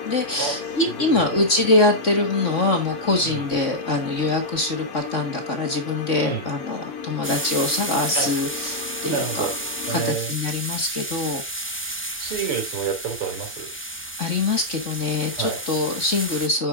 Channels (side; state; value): both; normal; correlation -0.07